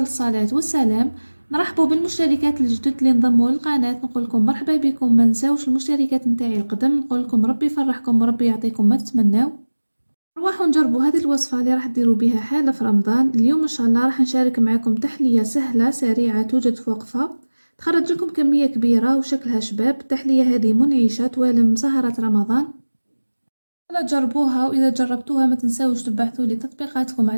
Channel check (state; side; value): inverted; both; correlation -1.00